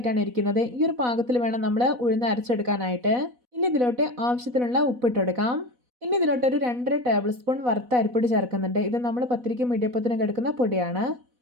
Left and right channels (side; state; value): left; late; 4.1 ms